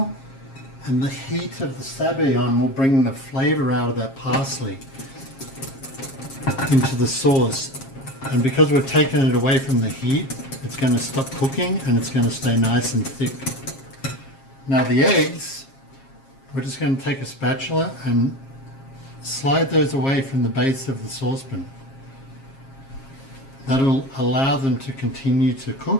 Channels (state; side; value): late; right; 7.4 ms